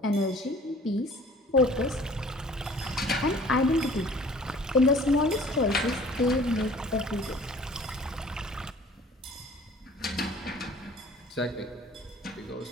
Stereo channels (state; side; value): normal; both; correlation 0.50